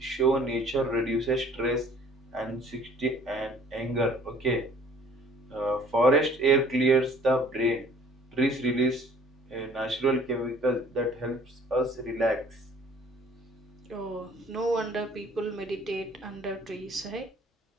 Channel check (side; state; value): both; normal; correlation 0.53